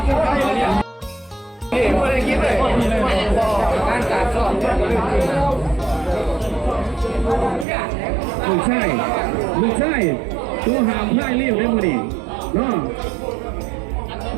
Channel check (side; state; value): left; drops out; at 7.7 s